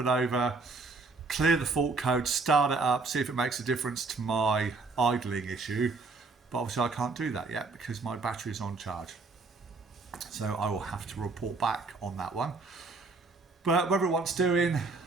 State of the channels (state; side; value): quieter; left; 3.9 dB